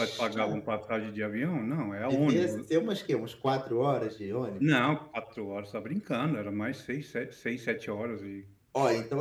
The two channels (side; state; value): both; identical; correlation 1.00